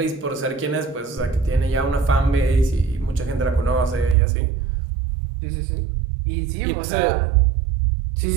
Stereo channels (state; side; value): drops out; left; at 4.2 s